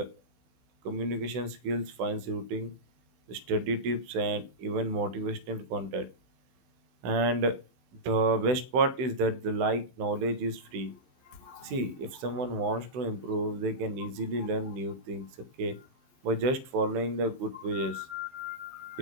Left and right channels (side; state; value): left; late; 16 ms